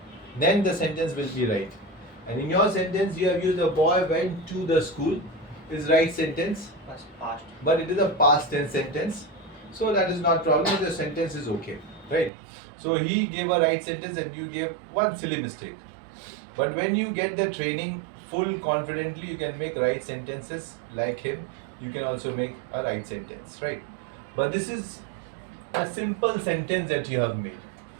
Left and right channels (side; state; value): left; drops out; at 12.3 s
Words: Then the sentence will be right. And in your sentence, you have used a boy went to the school. Is right sentence, Past. but it is a past tense sentence. So that is not problem. The sentence is okay, right? So he gave a right sentence and you gave one silly mistake. But when you get the training full confidently, you can make right sentences like him. You can also make a right sentence, right? But this is a simple sentence that you have made.